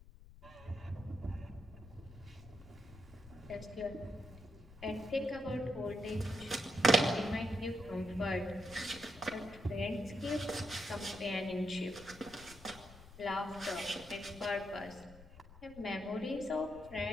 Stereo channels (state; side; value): noise; left; rumble, 18 dB below the sound